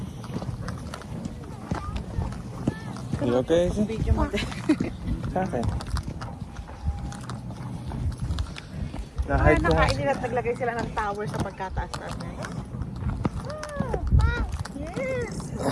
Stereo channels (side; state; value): both; identical; correlation 1.00